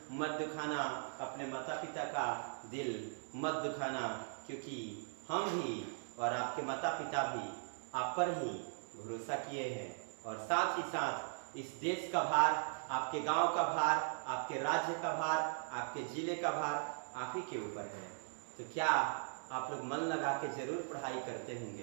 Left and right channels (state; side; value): silent; left; digital silence